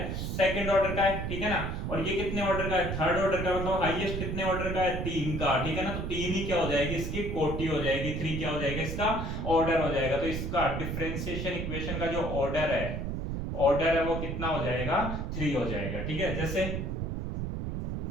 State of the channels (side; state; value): right; noise; rumble, 3 dB below the sound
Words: सेकंड ऑर्डर का है, ठीक है ना। और ये कितने ऑर्डर का है, थर्ड ऑर्डर का, मतलब हाईएस्ट कितने ऑर्डर का है, 3 का, ठीक है ना। तो 3 ही क्या हो जाएगी, इसकी कोटि हो जाएगी, 3 क्या हो जाएगा, इसका ऑर्डर हो जाएगा। तो इसका डिफरेंशिएशन इक्वेशन का जो ऑर्डर है वो कितना हो जाएगा, 3 हो जाएगा, ठीक है। जैसे